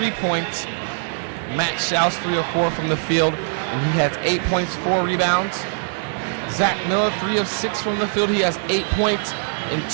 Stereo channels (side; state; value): left; silent; 58 dB below the other